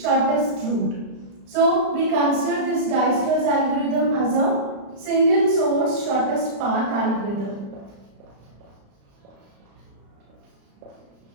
route. So we consider this Dijkstra's algorithm as a single source shortest path algorithm.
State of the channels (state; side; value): late; left; 35 ms